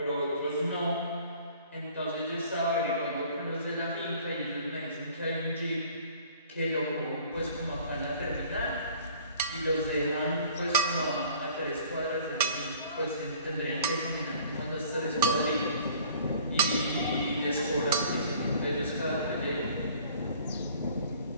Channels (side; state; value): both; inverted; correlation -0.52